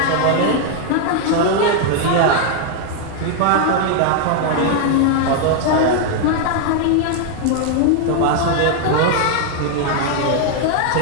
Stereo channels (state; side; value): different; both; correlation 0.00